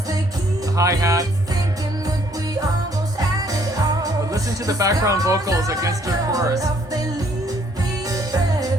hi-hat. But listen to the background vocals against her chorus.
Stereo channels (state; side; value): normal; both; correlation 0.64